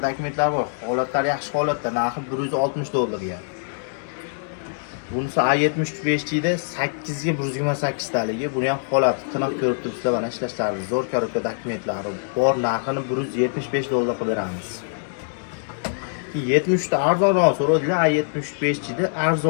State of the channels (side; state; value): right; silent; digital silence